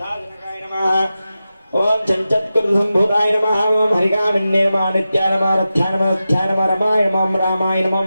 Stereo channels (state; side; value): inverted; both; correlation -0.92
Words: नमः ओम चञ्चत्कृतसम्भूताय नमः ओम हरिकामिन्ये नमः नित्याय नमः रथ्याय नमः रथ्याय नमः रमाय नमः रामाय नमः